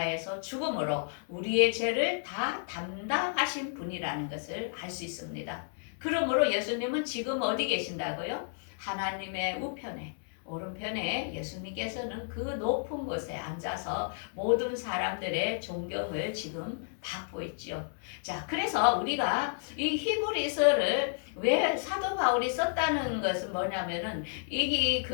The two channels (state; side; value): silent; right; 57 dB below the other